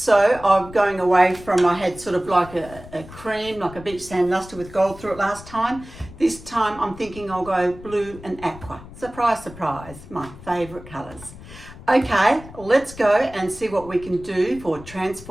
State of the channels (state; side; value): noise; left; rumble, 17 dB below the sound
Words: I'm going away from, I had sort of like a cream, like a beach sand luster with gold through it last time. This time I'm thinking I'll go blue and aqua. Surprise, surprise, my favourite colours. Okay, let's go and see what we can do for